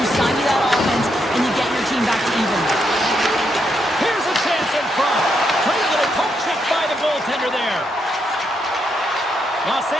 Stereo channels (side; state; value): both; normal; correlation 0.79